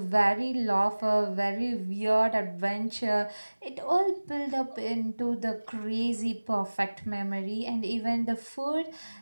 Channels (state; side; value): inverted; both; correlation -1.00